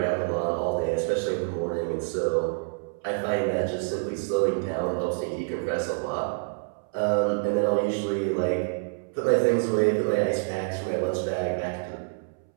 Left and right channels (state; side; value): silent; left; 60 dB below the other